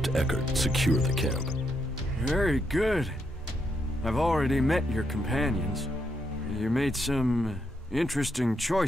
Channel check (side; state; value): both; normal; correlation 0.79